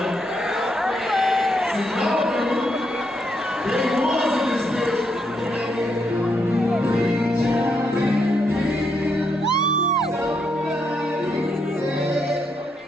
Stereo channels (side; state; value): both; normal; correlation 0.78